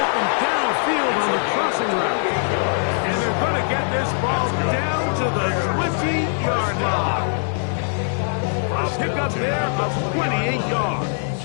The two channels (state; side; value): silent; right; digital silence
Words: downfield on the crossing route. And they're going to get this ball down to the 20-yard line. A pickup there of 28 yards.